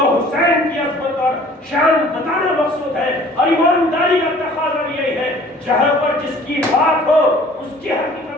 حسین کی عظمت اور شان بتانا مقصود ہے، اور ایمانداری کا تقاضا یہی ہے جہاں پر جس کی بات ہو اس کی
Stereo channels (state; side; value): normal; both; correlation 0.51